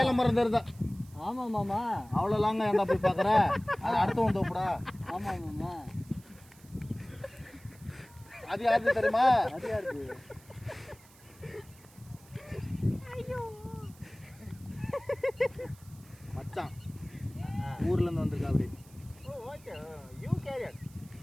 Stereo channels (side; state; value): right; noise; hiss, 25 dB below the sound